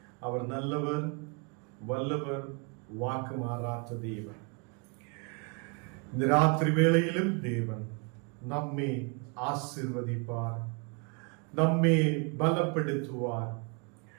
அவர் நல்லவர், வல்லவர், வாக்கு மாறாத தேவன். இந்த ராத்திரி வேளையிலும் தேவன் நம்மை ஆசீர்வதிப்பார், நம்மை பலப்படுத்துவார்,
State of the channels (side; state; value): left; quieter; 34.1 dB